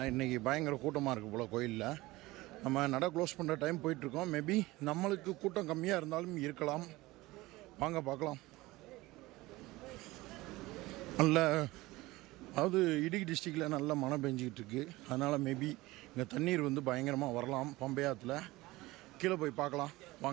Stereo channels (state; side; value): quieter; left; 19.8 dB